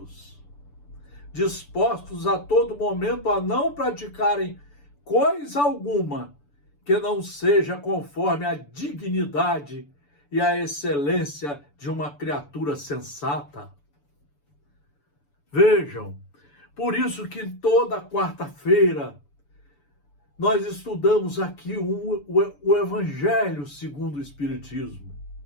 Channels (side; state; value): right; late; 6.9 ms